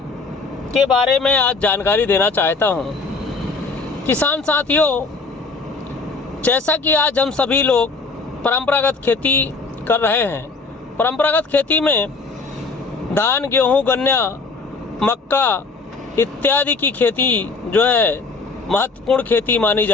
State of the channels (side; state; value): right; quieter; 4.0 dB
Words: के बारे में आज जानकारी देना चाहता हूं। किसान साथियों, जैसा कि आज हम सभी लोग परंपरागत खेती कर रहे हैं। परंपरागत खेती में धान, गेहूं, गन्ना, मक्का इत्यादि की खेती जो है महत्वपूर्ण खेती मानी